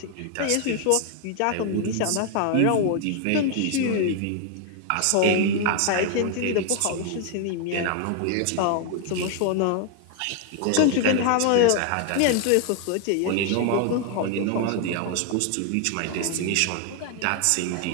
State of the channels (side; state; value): both; different; correlation 0.00